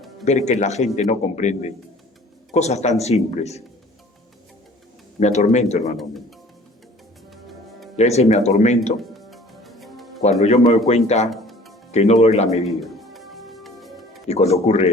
ver que la gente no comprende cosas tan simples. Me atormento, hermanos míos. Y a veces me atormento cuando yo me doy cuenta que no doy la medida. Y cuando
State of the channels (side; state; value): both; normal; correlation 0.49